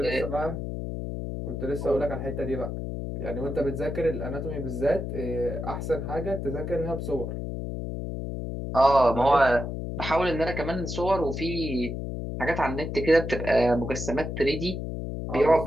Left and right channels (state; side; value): noise; left; hum, 5 dB below the sound